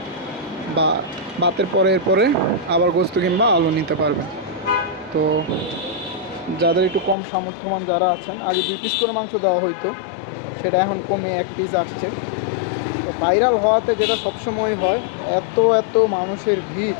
বা ভাতের পরে আবার গোস্ত কিংবা আলু নিতে পারবেন। তো যাদের একটু কম সামর্থ্যবান যারা আছেন, আগে 2 পিস করে মাংস দেওয়া হইতো, সেটা এখন কমে 1 পিস আসছে। তো ভাইরাল হওয়াতে যেটা সবসময় হয়, এত এত মানুষের ভিড়,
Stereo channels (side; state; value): right; drops out; at 7.2 s